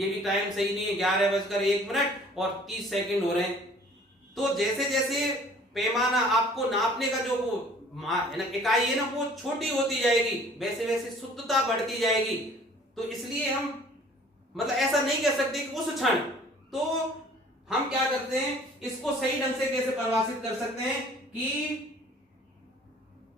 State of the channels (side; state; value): both; normal; correlation 0.53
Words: भी टाइम सही नहीं है, 11:01 और 30 सेकंड हो रहे हैं। तो जैसे जैसे पैमाना आपको नापने का जो वो इकाई है ना वो छोटी होती जाएगी, वैसे वैसे शुद्धता बढ़ती जाएगी। तो इसलिए हम मतलब ऐसा नहीं कह सकते कि उस क्षण, तो हम क्या करते हैं इसको सही ढंग से कैसे परिभाषित कर सकते हैं कि